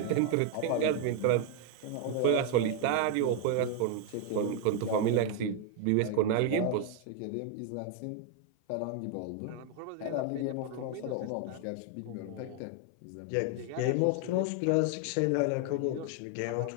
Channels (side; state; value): both; different; correlation 0.01